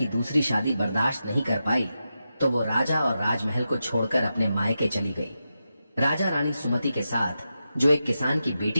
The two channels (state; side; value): inverted; both; correlation -0.89